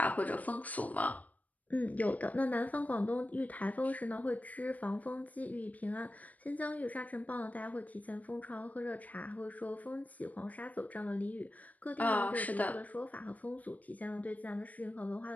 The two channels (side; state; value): right; late; 0.074 ms